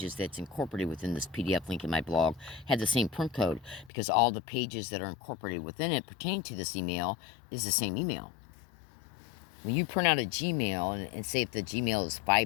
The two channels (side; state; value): right; drops out; at 3.9 s